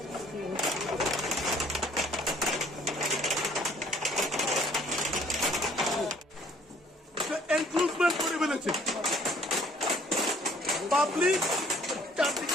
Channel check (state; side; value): normal; both; correlation 0.58